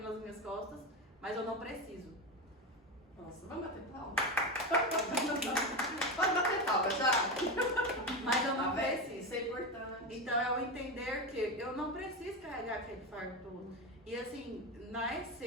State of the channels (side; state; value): both; normal; correlation 0.16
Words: nas minhas costas, mas eu não preciso. Nossa, vamos bater palma? Pode bater palma já? Mas eu não preciso. Isso é importante. Então é o entender que eu não preciso carregar aquele fardo todo. E assim, na